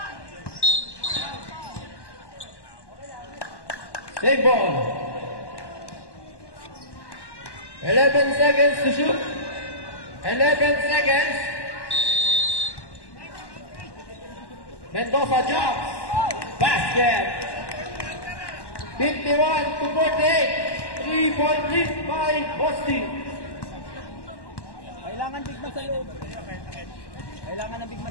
Save ball. 11 seconds to shoot. 11 seconds. Mendoza jumps. Basket. 51 to 48. 3-point lead by Boston. Kailangan big man sa loob. Kailangan ng big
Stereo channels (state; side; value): late; right; 1.1 ms